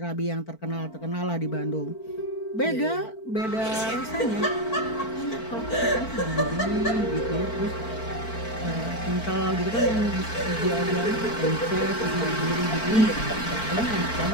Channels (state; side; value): late; right; 4.5 ms